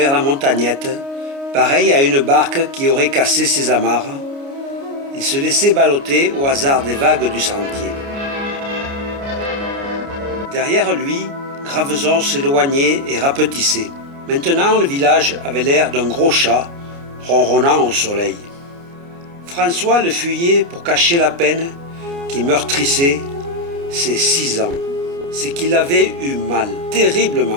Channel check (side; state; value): left; late; 29 ms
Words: la montagnette, pareil à une barque qui aurait cassé ses amarres. Il se laissait balloter au hasard des vagues du sentier. Derrière lui, Graveson s'éloignait et rapetissait. Maintenant, le village avait l'air d'un gros chat, ronronnant au soleil. François le fuyait pour cacher la peine qui meurtrissait ses 6 ans. C'est qu'il avait eu mal,